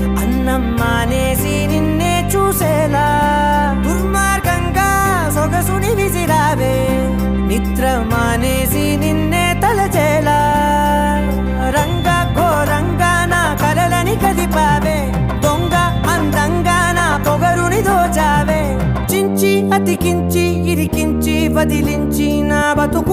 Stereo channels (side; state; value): both; identical; correlation 1.00